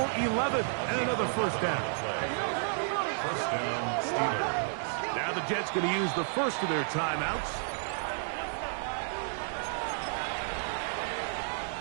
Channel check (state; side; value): silent; left; digital silence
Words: 11 and another first down. First down, Steelers. Now the Jets going to use the first of their timeouts.